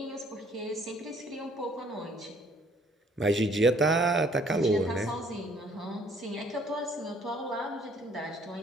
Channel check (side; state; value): both; normal; correlation 0.61